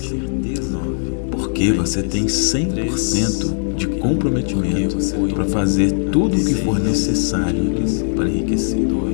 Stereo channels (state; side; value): silent; right; 67 dB below the other